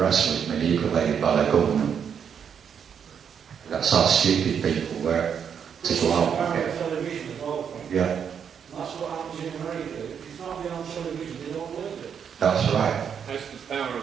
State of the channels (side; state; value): left; quieter; 7.6 dB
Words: was manipulated by the government. That's how stupid people were to go out and get. Yeah. That's what happens in America. If it's not been on television, they don't believe it. That's right. That's the power